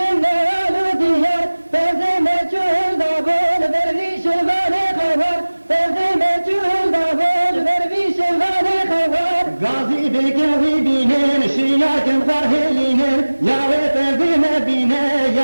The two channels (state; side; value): inverted; both; correlation -1.00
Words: walu diyar Tezine çuhun da bol derviş vani khawar Tezine çuhun da bol derviş vani khawar Gazi bekevi binen şiyakem farhelinen Yahve tezine bine